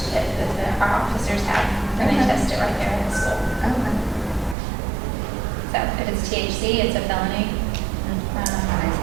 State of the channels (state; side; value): drops out; left; at 4.5 s